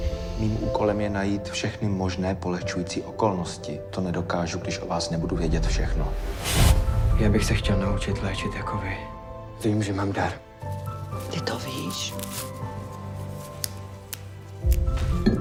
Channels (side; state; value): both; identical; correlation 1.00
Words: Mým úkolem je najít všechny možné polehčující okolnosti. To nedokážu, když o vás nebudu vědět všechno. Já bych se chtěl naučit léčit jako vy. Vím, že mám dar. Ty to víš?